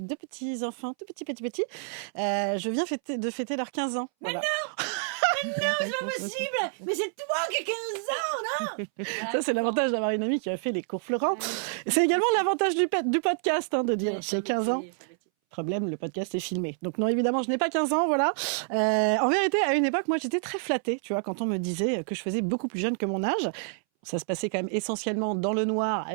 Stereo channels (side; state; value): left; silent; 59 dB below the other